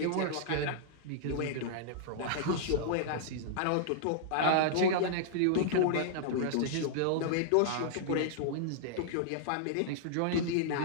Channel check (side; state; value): both; different; correlation -0.01